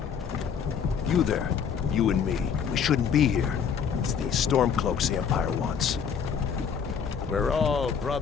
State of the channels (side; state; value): right; quieter; 7.0 dB